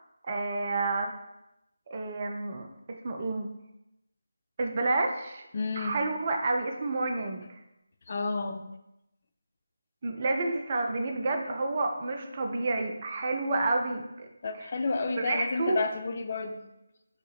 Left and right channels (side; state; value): both; inverted; correlation -0.85